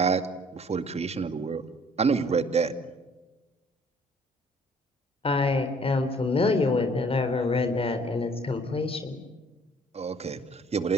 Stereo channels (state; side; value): normal; both; correlation 0.57